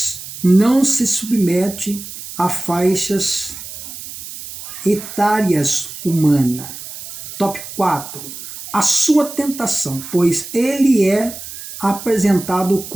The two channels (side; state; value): right; noise; hiss, 12 dB below the sound